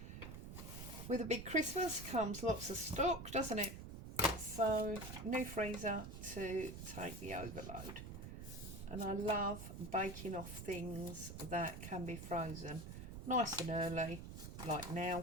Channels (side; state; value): right; noise; rumble, 9 dB below the sound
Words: with a big Christmas comes lots of stock, doesn't it? So new freezer to take the overload. And I love baking off things that can be frozen. nice and early, like